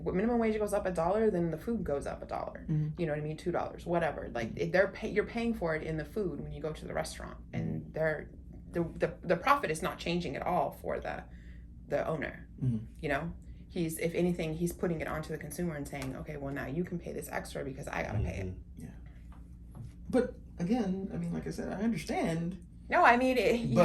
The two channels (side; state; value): both; identical; correlation 1.00